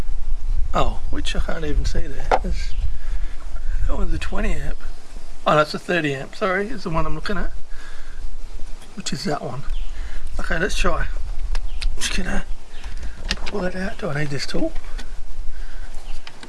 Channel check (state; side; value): identical; both; correlation 1.00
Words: Oh, which I can't even see there. That one's a 20 amp. Oh, that's a 30 amp. Sorry, is the one I'm looking at, which is that one. Okay, let's try. Just gonna pull it out. Do I need this tool?